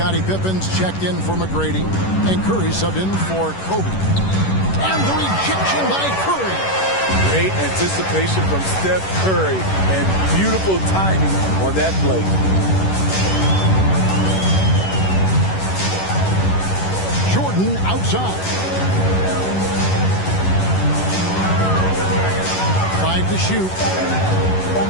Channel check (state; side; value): late; right; 11 ms